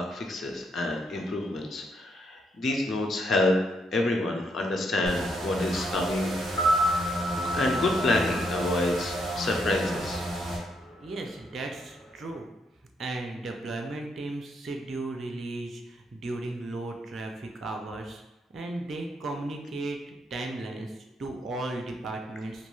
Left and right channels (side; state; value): both; normal; correlation 0.76